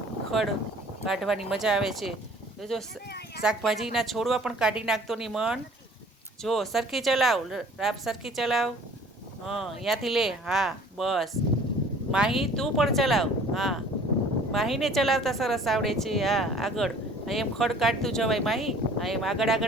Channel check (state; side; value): normal; both; correlation 0.51